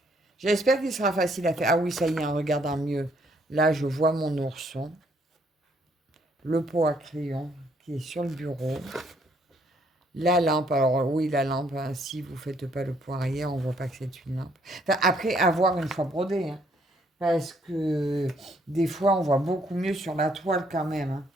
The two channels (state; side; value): normal; both; correlation 0.67